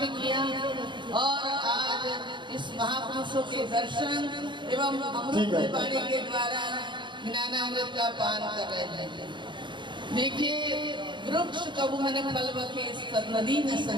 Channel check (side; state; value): left; late; 0.23 ms